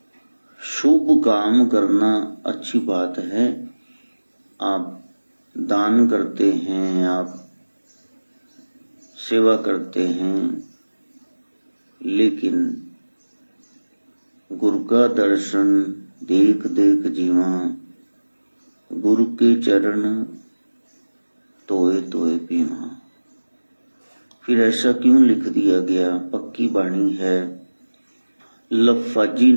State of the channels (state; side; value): inverted; both; correlation -1.00